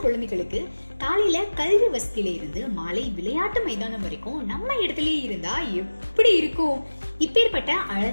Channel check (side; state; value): both; inverted; correlation -1.00